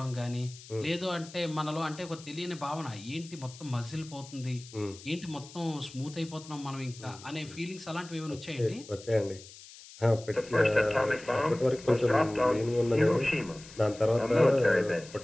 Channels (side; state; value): left; noise; hiss, 18 dB below the sound